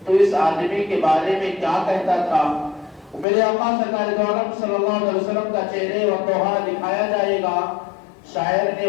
تو اس آدمی کے بارے میں کیا کہتا تھا؟ میرے آقا سرکار دو عالم صلی اللہ علیہ وسلم کا چہرے و توحا دکھایا جائے گا۔ شاعر نے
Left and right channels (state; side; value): drops out; right; at 3.2 s